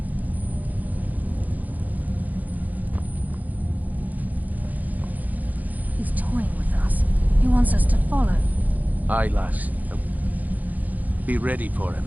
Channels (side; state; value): left; late; 0.080 ms